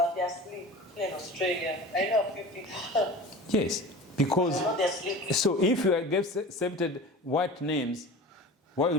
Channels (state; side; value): normal; both; correlation 0.36